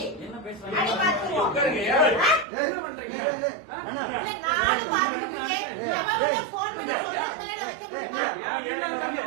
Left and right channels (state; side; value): drops out; left; at 2.5 s